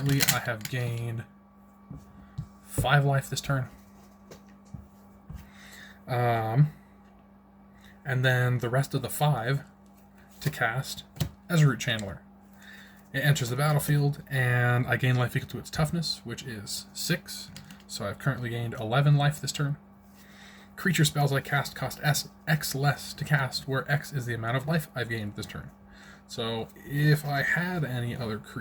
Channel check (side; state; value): both; identical; correlation 1.00